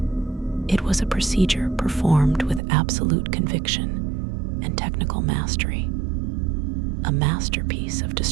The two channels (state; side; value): drops out; left; at 2.6 s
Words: It was a procedure performed with absolute conviction and technical mastery, a masterpiece of